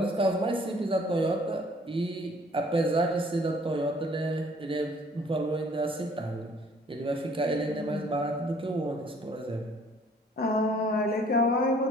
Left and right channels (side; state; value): both; normal; correlation 0.58